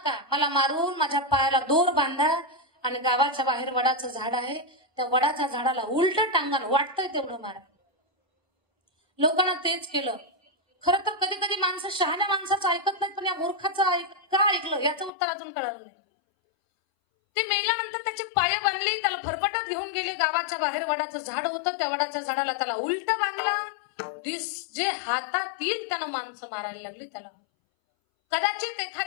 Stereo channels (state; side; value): drops out; right; at 15.1 s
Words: मला मारून माझ्या पायाला दोर बांधा आणि गावाच्या बाहेर वडाचं झाड आहे, त्या वडाच्या झाडाला उलट टांगण वाटतंय तेवढं मारा. लोकांना तेच केलं. खरं तर कधी कधी माणसं शहाण्या माणसाचं ऐकत नाहीत, पण या मूर्खाचं का ऐकलं याचं उत्तर अजून कळालं नाही. ते मेल्यानंतर त्याची पाय बांधली, त्याला फरफटत घेऊन गेले गावाच्या बाहेर. वडाचं झाड होतं, त्या वडाच्या झाडाला त्याला उलट बांधलं. जे हातात येईल त्यानं माणसं मारायला लागली त्याला. कदाचित